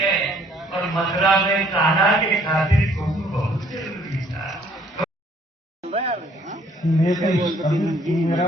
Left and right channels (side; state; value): both; normal; correlation 0.61